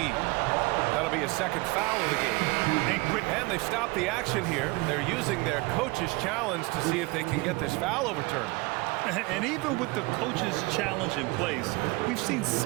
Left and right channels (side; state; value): left; quieter; 24.3 dB